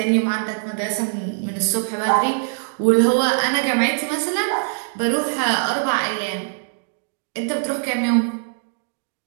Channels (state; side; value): silent; left; digital silence